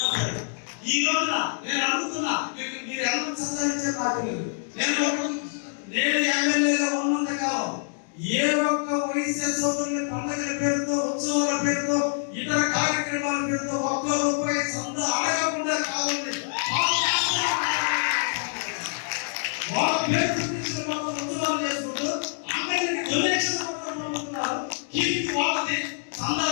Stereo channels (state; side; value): silent; right; digital silence